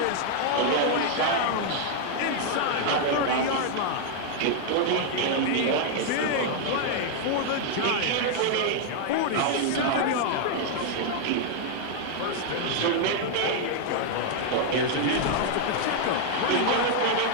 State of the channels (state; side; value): different; both; correlation 0.00